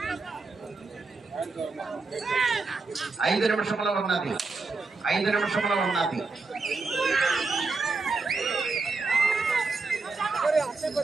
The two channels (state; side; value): quieter; left; 3.9 dB